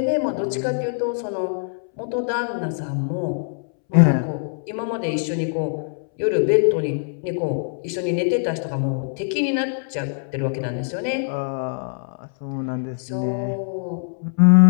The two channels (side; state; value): right; silent; 63 dB below the other